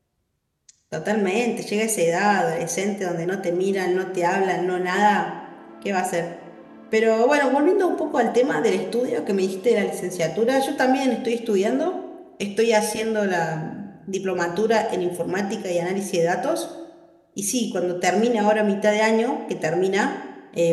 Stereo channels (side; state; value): both; identical; correlation 1.00